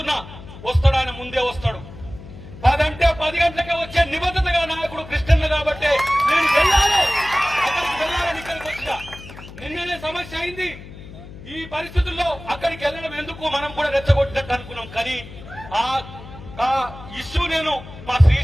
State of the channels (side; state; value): left; noise; hum, 15 dB below the sound